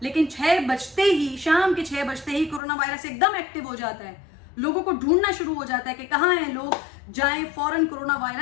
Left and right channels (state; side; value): drops out; right; at 2.6 s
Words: लेकिन 6 बजते ही, शाम के 6 बजते ही कोरोना वायरस एकदम एक्टिव हो जाता है। लोगों को ढूंढना शुरू हो जाता है कि कहाँ हैं लोग, जाएं फौरन, कोरोना